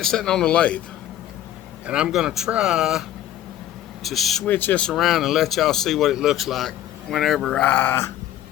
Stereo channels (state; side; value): quieter; right; 12.2 dB